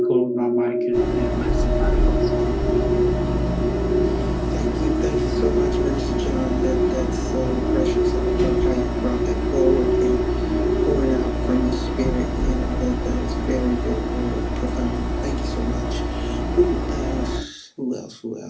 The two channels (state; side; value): identical; both; correlation 1.00